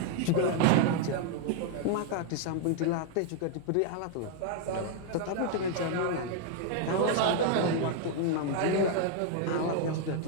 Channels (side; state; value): both; different; correlation 0.00